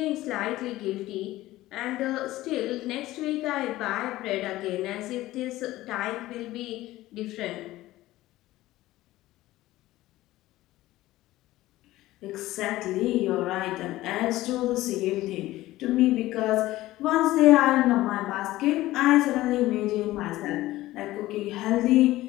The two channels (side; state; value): right; quieter; 16.6 dB